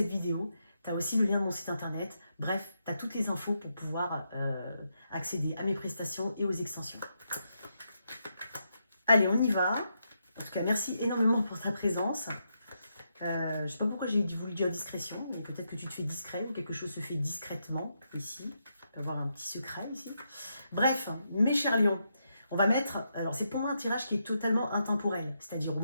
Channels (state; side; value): inverted; both; correlation -0.82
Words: vidéo. Tu as aussi le lien de mon site internet. Bref, tu as toutes les infos pour pouvoir accéder à mes prestations et aux extensions. Allez, on y va. En tout cas, merci énormément pour ta présence. Je ne sais pas pourquoi j'ai voulu dire discrétion, mais peut-être que tu te fais discret ou quelque chose se fait discrètement ici. On peut avoir un petit secret ici. Bref, mes chers lions, on va mettre... Alors, c'est pour moi un tirage qui est totalement intemporel. C'est-à-dire, au